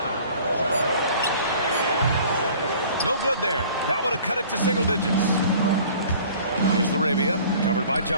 No good there. That would have cut it to single digits. Here's Laravia, covered by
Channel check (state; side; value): inverted; both; correlation -0.49